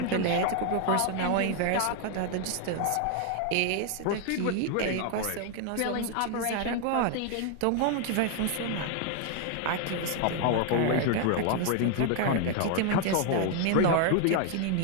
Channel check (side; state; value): both; different; correlation 0.00